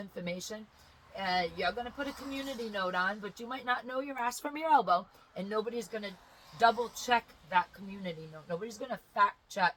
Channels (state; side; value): identical; both; correlation 1.00